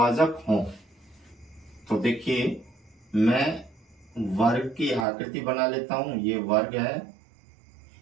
हों। तो देखिए, मैं वर्ग की आकृति बना लेता हूं, ये वर्ग है।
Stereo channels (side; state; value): left; drops out; at 5.1 s